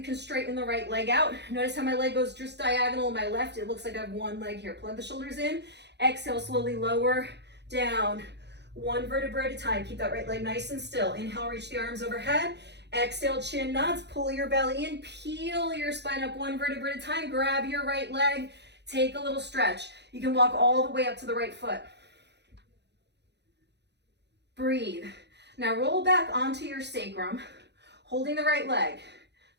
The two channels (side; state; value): left; late; 0.50 ms